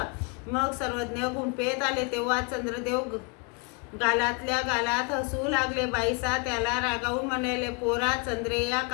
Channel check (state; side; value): quieter; right; 33.0 dB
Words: मग सर्वज्ञ गुंफेत आले तेव्हा चंद्रदेव गालातल्या गालात हसू लागले। बाईसा त्याला रागावून म्हणाले, पोरा चंद्रया